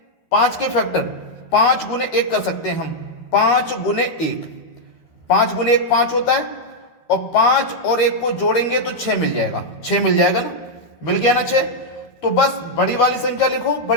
5 के फैक्टर 5 × 1 कर सकते हैं हम, 5 × 1, 5 × 1 5 होता है, और 5 और 1 को जोड़ेंगे तो 6 मिल जाएगा, 6 मिल जाएगा ना, मिल गया ना 6। तो बस बड़ी वाली संख्या लिखो,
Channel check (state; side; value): late; right; 12 ms